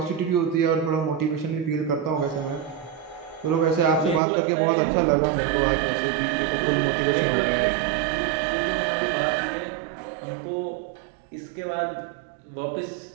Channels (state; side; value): drops out; left; at 4.2 s